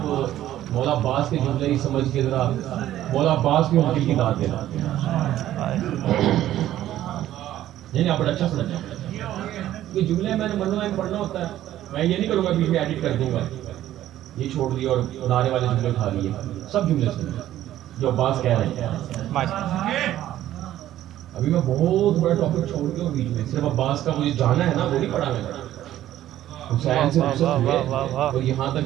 मौला अब्बास के जुमले ही समझ के जरा मौला अब्बास की उनकी की दाद देना। नहीं आप बड़ा अच्छा समझ, ये जुमले मैंने मनवा में पढ़ना होता है। मैं ये नहीं करूँगा बीच में एडिट कर दूंगा, ये छोड़ दिया और नारे वाले जुमले उठा लिए। सब जुमले सुने जो अब्बास कह रहे हैं। अभी मैं बहुत बड़ा टॉपिक छोड़ दिया बीच में, सिर्फ अब्बास का मुझे जाना है ना, वो नहीं पढ़ा मैंने। हुसैन से और यहाँ तक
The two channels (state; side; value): quieter; left; 13.1 dB